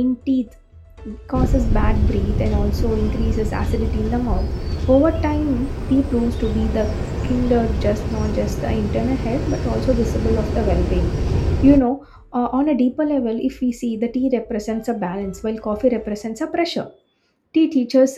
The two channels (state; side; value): identical; both; correlation 1.00